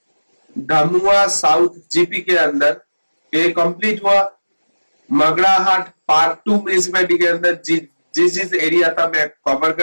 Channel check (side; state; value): both; inverted; correlation -1.00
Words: धामुआ साउथ जीपी के अंदर। ये कंप्लीट हुआ मगड़ाहट पार्ट 2 म्यूनिसिपैलिटी के अंदर, जिस एरिया था मैं कवर